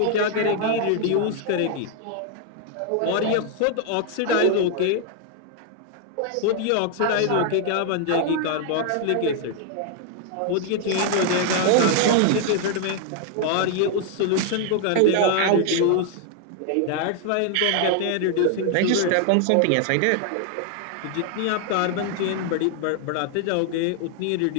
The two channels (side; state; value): both; different; correlation 0.00